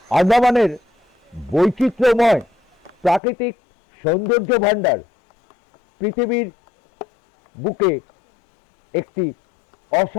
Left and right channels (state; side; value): drops out; right; at 3.2 s